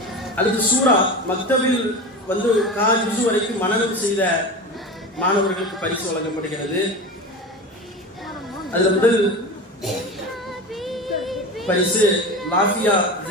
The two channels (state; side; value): normal; both; correlation 0.28